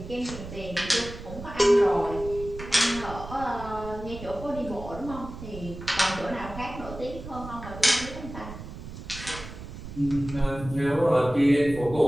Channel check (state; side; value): noise; right; rumble, 12 dB below the sound